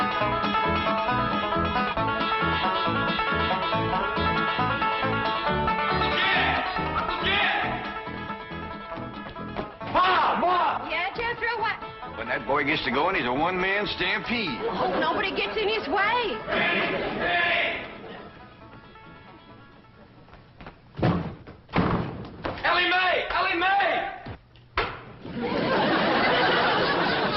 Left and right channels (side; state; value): both; identical; correlation 1.00